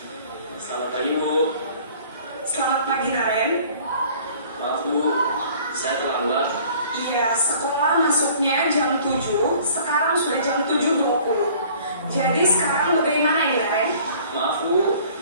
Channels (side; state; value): both; inverted; correlation -0.52